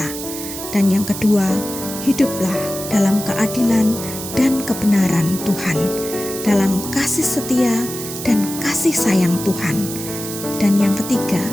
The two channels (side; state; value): right; noise; hiss, 9 dB below the sound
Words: Dan yang kedua, hiduplah dalam keadilan dan kebenaran Tuhan, dalam kasih setia dan kasih sayang Tuhan. Dan yang ketiga,